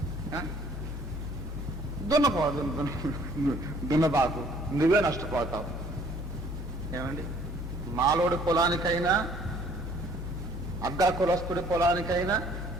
దున్నబాకు, నువ్వే నష్టపోతావు. ఏమండి? మాలోడి పొలానికైనా అగ్ర కులస్తుడి పొలానికైనా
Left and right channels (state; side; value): normal; both; correlation 0.58